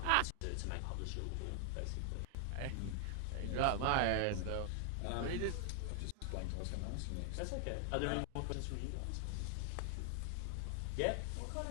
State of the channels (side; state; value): both; different; correlation 0.00